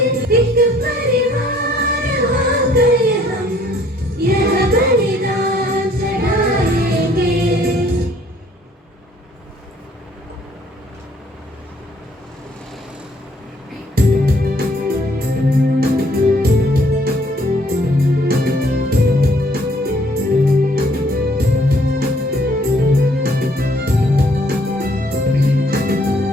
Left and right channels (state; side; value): normal; both; correlation 0.62